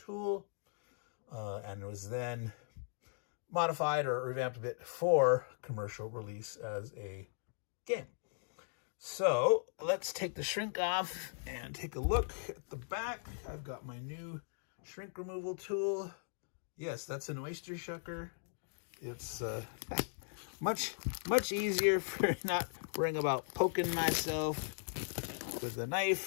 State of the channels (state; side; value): silent; right; digital silence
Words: and was then modified or revamped a bit for commercial release as a game. So let's take the shrink off and take a look at the back. I've got my new shrink removal tool. Yes, that's an oyster shucker. It's much easier for not worrying about poking myself with a